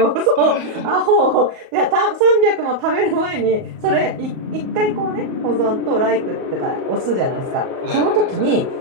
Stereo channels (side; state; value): left; late; 38 ms